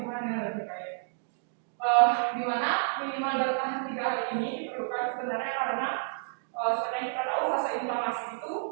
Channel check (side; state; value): left; silent; digital silence